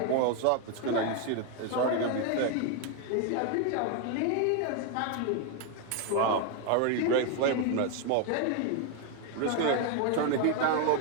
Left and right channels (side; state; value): both; different; correlation 0.01